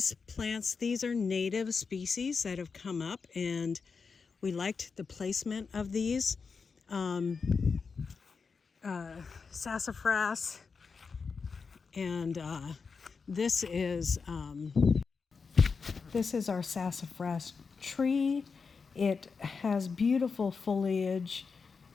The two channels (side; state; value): right; quieter; 5.2 dB